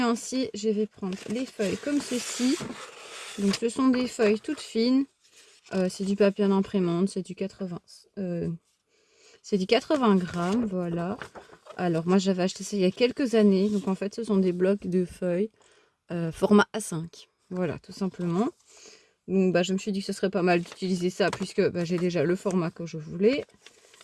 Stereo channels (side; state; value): both; identical; correlation 1.00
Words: je vais prendre les feuilles comme ceci. Donc ce sont des feuilles toutes fines. C'est du papier en imprimante, c'est du 80 grammes, voilà. Alors moi j'avais acheté ça il y a quelques années. Donc en fait ce sont des blocs de feuilles format A5. Voilà, tout simplement. Donc je me suis dit que ce serait pas mal d'utiliser ça puisque j'ai déjà le format que je voulais.